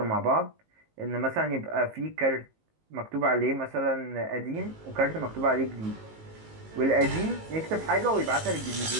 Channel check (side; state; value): left; late; 19 ms